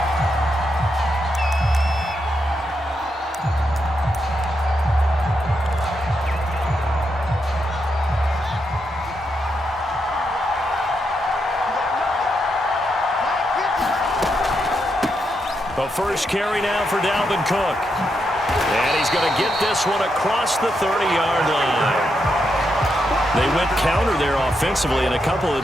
The first carry now for Dalvin Cook. And he's going to get this one across the 30-yard line. They went counter there offensively, and a couple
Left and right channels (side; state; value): both; normal; correlation 0.82